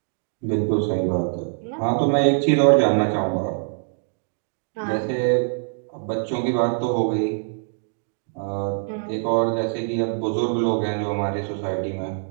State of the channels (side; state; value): left; silent; digital silence